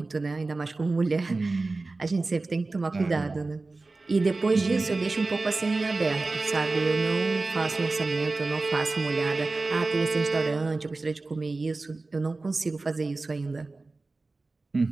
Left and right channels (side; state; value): left; quieter; 3.5 dB